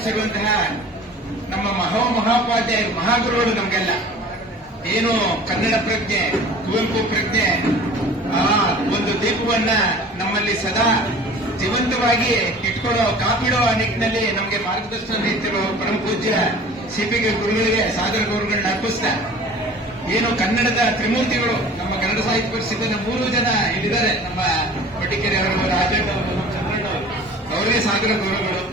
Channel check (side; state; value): both; normal; correlation 0.44